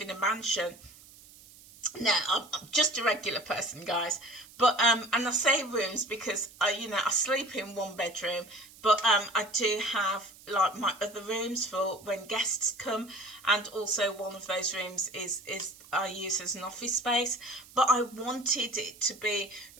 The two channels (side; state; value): right; noise; hiss, 22 dB below the sound